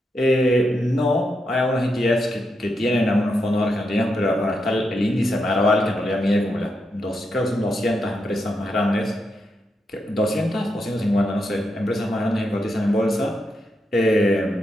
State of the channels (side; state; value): both; normal; correlation 0.83